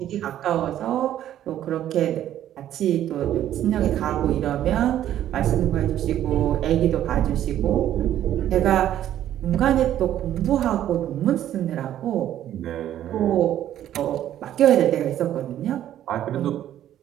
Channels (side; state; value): left; quieter; 11.7 dB